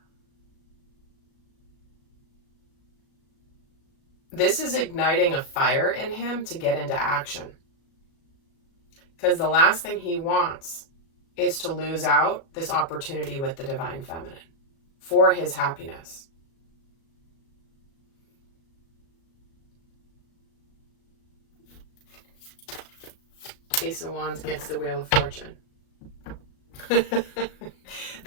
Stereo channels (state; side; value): late; right; 37 ms